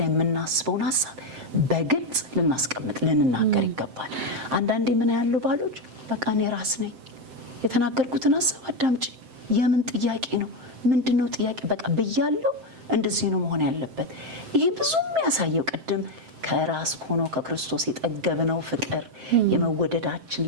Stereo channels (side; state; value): left; late; 7.7 ms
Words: የምናስበውን ሐሳብ በግልጽ ልናስቀምጥ ልንናገር ይገባል። አንዳንዴ ምን ያለው ባሎች በቃ እኔ ራስ ነኝ የተናገርኩትን ሐሳብ አዳምጪ፣ የምን ጥያቄ ነው ምንድነው ጥያቄ በቃ ብያለሁ፣ እንደዚህ ነው መሆን ያለበት። ይሄ ብዙ የሚያሳየው ቅድም ከራስ ሆኖ ከክርስቶስ የጠገብነው ፍቅር የመወደዳችን